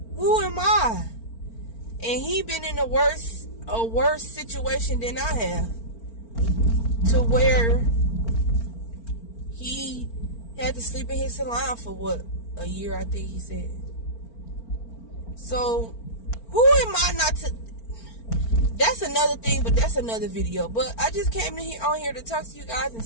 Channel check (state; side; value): late; right; 4.4 ms